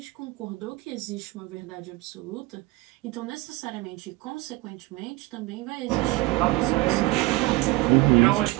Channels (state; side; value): quieter; left; 21.4 dB